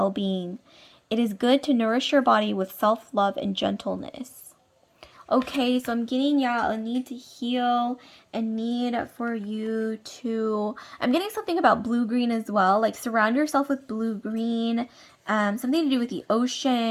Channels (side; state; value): both; identical; correlation 1.00